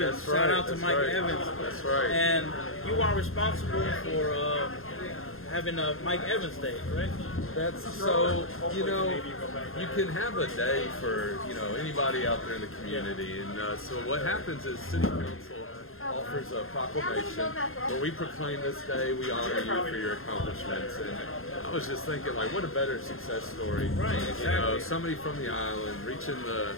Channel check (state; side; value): late; right; 0.61 ms